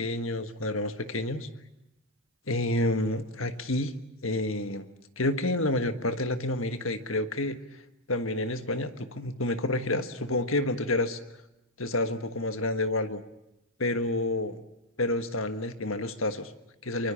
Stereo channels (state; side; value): normal; both; correlation 0.01